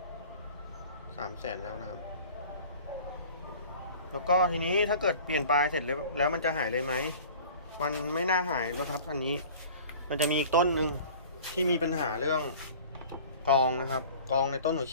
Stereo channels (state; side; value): inverted; both; correlation -0.44